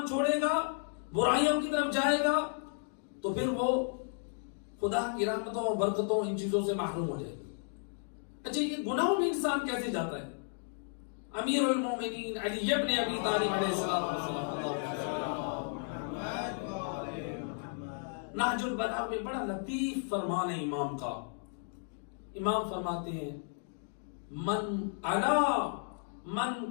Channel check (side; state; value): right; silent; digital silence